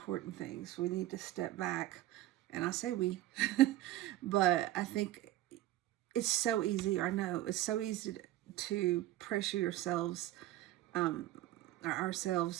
things. We need to step back, and I say we, but I think it's so easy. I know it's so easy to pressure ourselves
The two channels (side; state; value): left; quieter; 14.9 dB